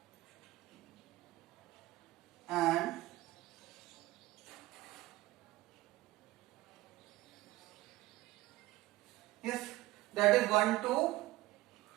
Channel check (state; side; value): quieter; left; 18.3 dB